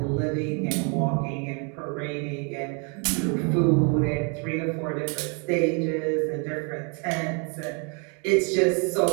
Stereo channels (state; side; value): quieter; left; 36.5 dB